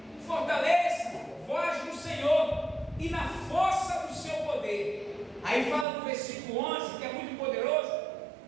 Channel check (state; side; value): drops out; left; at 5.9 s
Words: fortaleça vós no Senhor e na força do seu poder. Aí fala no versículo 11, que é muito poderoso.